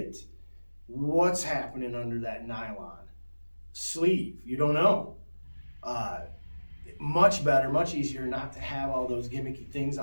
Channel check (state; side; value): inverted; both; correlation -1.00